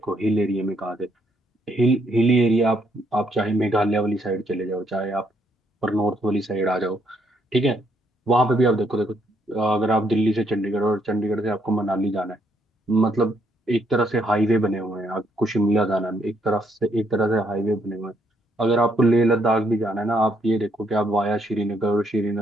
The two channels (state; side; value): normal; both; correlation 0.72